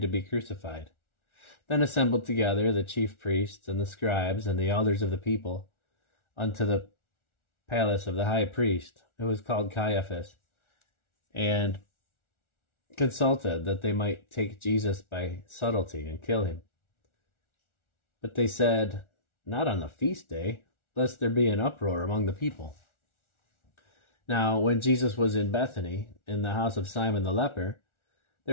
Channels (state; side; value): late; right; 1.4 ms